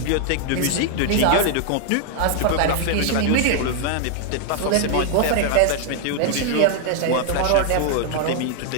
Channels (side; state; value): both; different; correlation 0.00